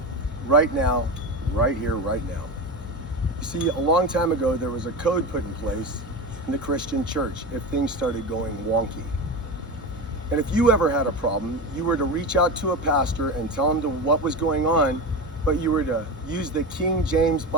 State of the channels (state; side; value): normal; both; correlation 0.22